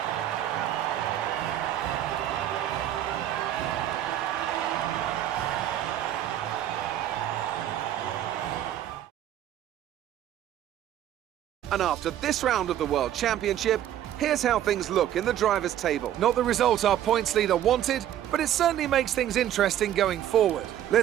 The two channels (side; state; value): left; quieter; 11.6 dB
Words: And after this round of the World Championship, here's how things look in the drivers' table. Not the result our points leader wanted, but it certainly makes things interesting going forward.